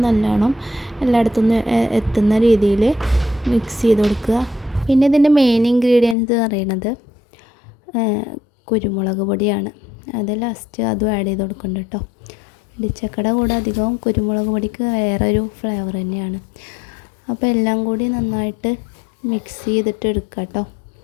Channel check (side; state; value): right; drops out; at 6.2 s